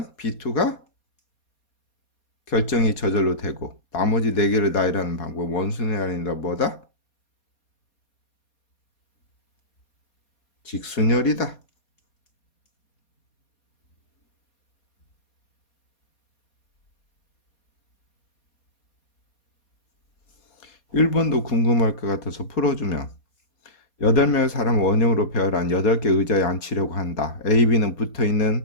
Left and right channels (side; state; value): right; late; 4.2 ms